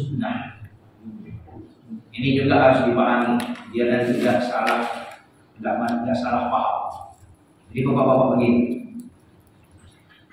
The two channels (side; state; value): both; identical; correlation 1.00